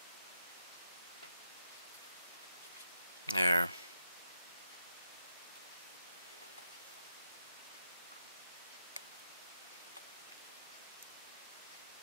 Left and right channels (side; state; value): both; inverted; correlation -0.84